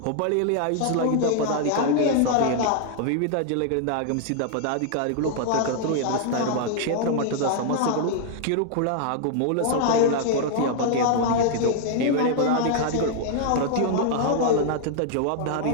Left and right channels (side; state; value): both; different; correlation 0.00